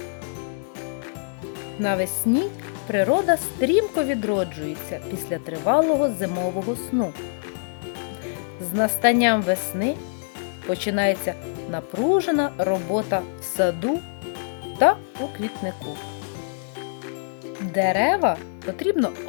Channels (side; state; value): right; silent; 59 dB below the other